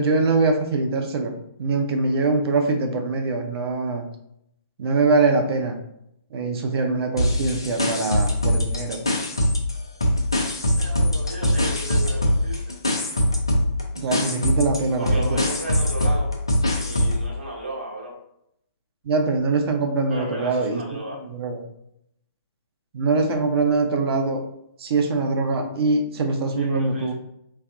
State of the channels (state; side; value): inverted; both; correlation -0.62